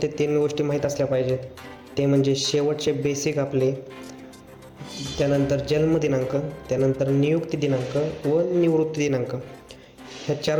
ते 3 गोष्टी माहीत असल्या पाहिजेत. ते म्हणजे शेवटचे बेसिक आपले, त्यानंतर जन्मदिनांक, त्यानंतर नियुक्ती दिनांक व निवृत्ती दिनांक, ह्या 4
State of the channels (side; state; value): both; identical; correlation 1.00